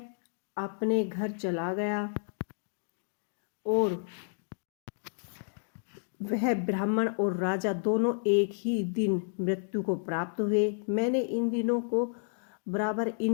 अपने घर चला गया और वह ब्राह्मण और राजा दोनों एक ही दिन मृत्यु को प्राप्त हुए। मैंने इन दिनों को बराबर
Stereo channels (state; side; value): silent; right; digital silence